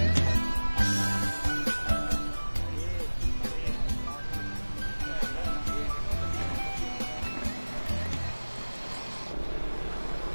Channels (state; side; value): inverted; both; correlation -1.00